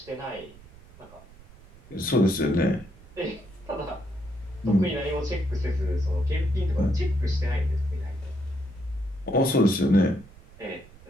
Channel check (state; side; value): noise; right; rumble, 22 dB below the sound